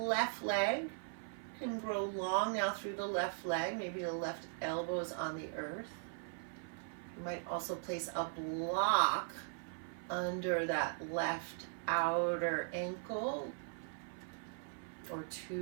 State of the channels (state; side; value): silent; left; 51 dB below the other